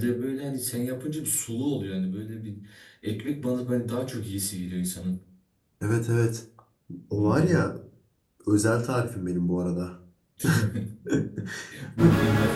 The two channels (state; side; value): identical; both; correlation 1.00